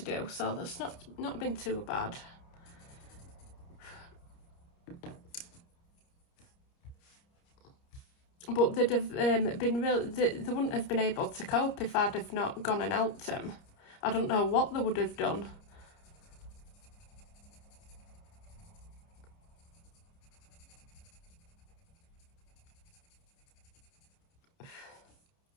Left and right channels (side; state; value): right; late; 29 ms